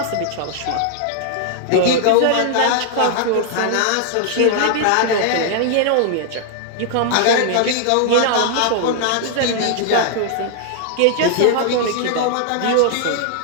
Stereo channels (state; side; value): different; both; correlation -0.01